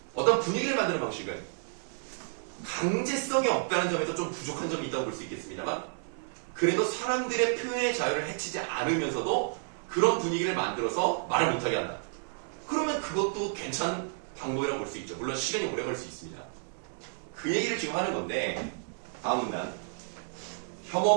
어떤 분위기를 만드는 방식은 강제성이 없다는 점에서 좀 부족한 점이 있다고 볼 수 있겠습니다만 그래도 사람들의 표현의 자유를 해치지 않으면서도 그런 분위기를 만들어서 말을 못하게 한다. 그러면 그것도 괜찮은 방법이라고 볼 수 있죠. 물론 시간이 오래 걸릴 수 있습니다. 그 얘기를 지금 하는 건데 다음 문단.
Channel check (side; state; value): left; silent; 57 dB below the other